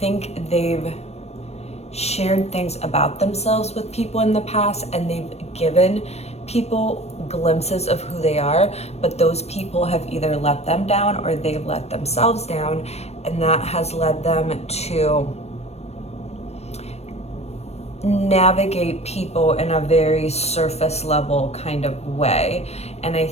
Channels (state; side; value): late; right; 0.31 ms